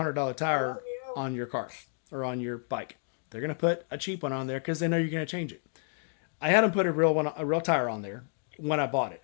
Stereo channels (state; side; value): silent; right; digital silence